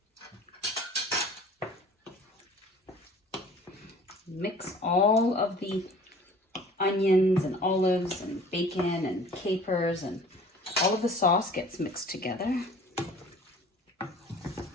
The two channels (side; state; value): both; normal; correlation 0.47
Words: Mix all of the onions and olives and bacon and capers, and all of the sauce gets mixed together.